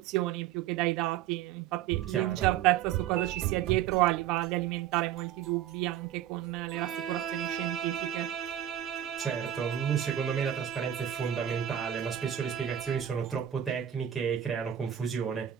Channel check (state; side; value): quieter; left; 10.6 dB